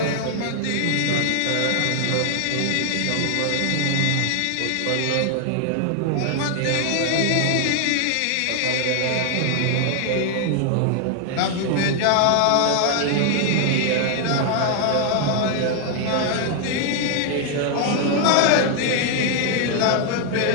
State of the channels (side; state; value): both; different; correlation 0.00